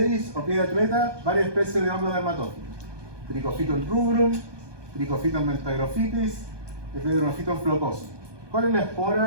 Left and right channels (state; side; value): late; left; 1.2 ms